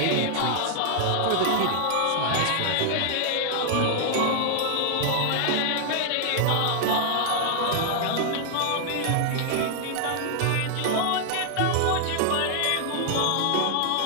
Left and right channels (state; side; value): different; both; correlation 0.00